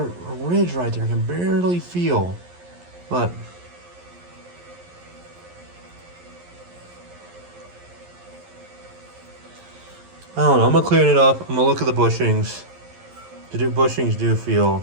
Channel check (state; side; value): late; left; 11 ms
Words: ridge right there. I can barely feel. But I don't know. I'm gonna clean it up. I'm gonna look at the bushings. The bushings do feel